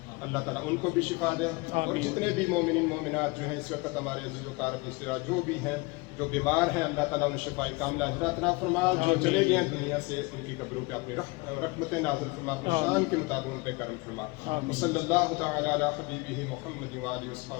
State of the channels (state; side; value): quieter; right; 25.4 dB